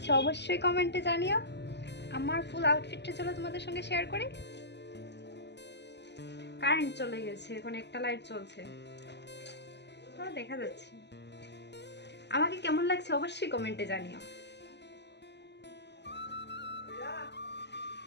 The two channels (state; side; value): late; right; 0.50 ms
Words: অবশ্যই কমেন্টে জানিও। আমার ফুল আউটফিটটা চলো তোমাদের সঙ্গে শেয়ার করি। কারেন্ট চলে গেছে, এখন একটা লাইট চলছে, তো দেখা যাচ্ছে। আমাকে কেমন লাগছে অবশ্যই কমেন্টে জানিও।